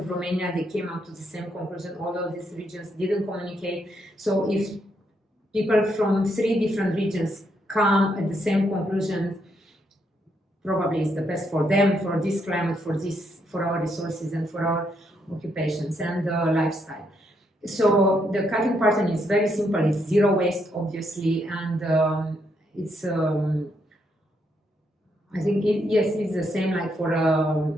Romania, they came up to the same conclusion, although these regions didn't communicate. So if people from 3 different regions come at the same conclusion, probably it's the best for them, for this climate, for our resources, and for our occupations and lifestyle. So the cutting pattern is very simple. It's zero waste, obviously, and it's. I think it's the same like for a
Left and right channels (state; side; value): normal; both; correlation 0.76